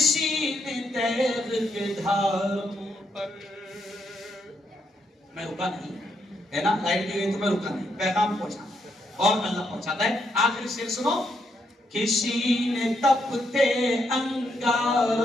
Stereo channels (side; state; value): both; normal; correlation 0.78